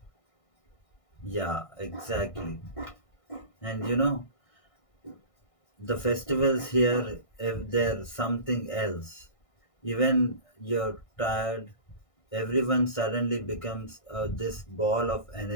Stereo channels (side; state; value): right; late; 1.6 ms